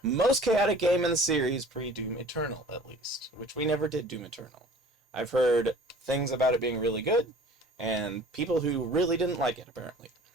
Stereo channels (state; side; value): normal; both; correlation 0.46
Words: most chaotic game in the series, pre-Doom Eternal, at least. Which we never did Doom Eternal. I've heard things about it being really good, and people who really didn't like it, apparently.